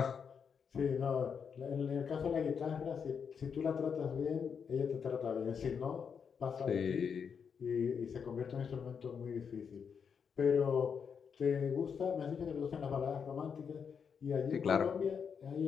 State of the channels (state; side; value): quieter; right; 6.6 dB